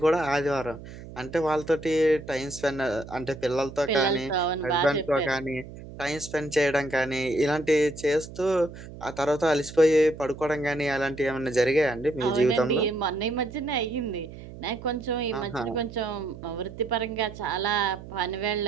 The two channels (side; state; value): right; noise; hum, 14 dB below the sound